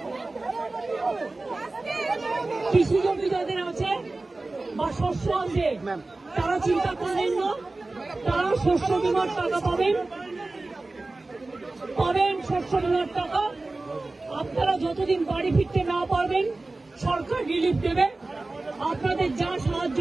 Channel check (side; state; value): left; quieter; 3.2 dB